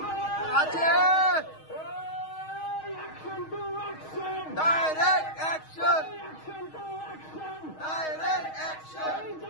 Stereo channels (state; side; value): late; right; 6.4 ms